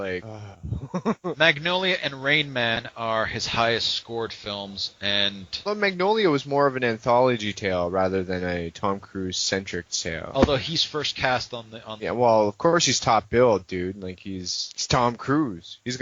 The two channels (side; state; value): both; identical; correlation 1.00